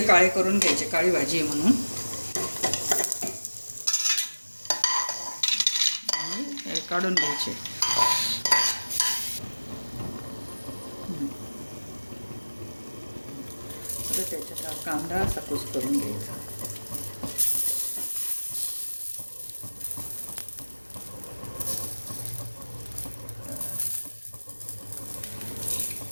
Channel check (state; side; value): inverted; both; correlation -1.00